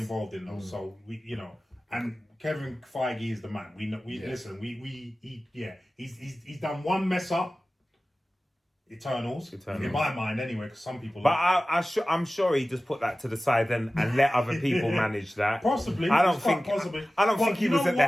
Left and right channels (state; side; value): normal; both; correlation 0.96